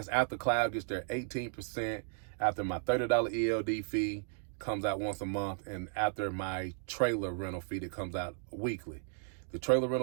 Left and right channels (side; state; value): left; silent; 55 dB below the other